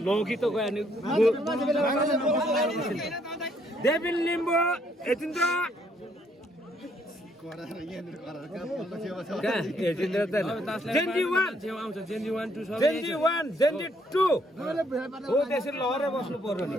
लोकी त गयो नि देविन लिम्बू यतिन्द्र जेन्जी 1 जेन्जी 2 हो त्यसरी लहरै बस्नु पर्यो नि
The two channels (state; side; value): normal; both; correlation 0.69